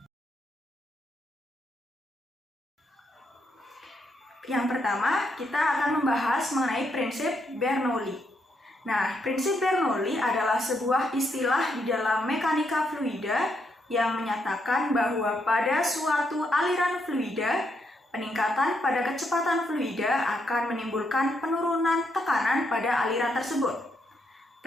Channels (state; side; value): normal; both; correlation 0.78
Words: Yang pertama, kita akan membahas mengenai prinsip Bernoulli. Nah, prinsip Bernoulli adalah sebuah istilah di dalam mekanika fluida yang menyatakan bahwa pada suatu aliran fluida, peningkatan pada kecepatan fluida akan menimbulkan penurunan tekanan pada aliran tersebut.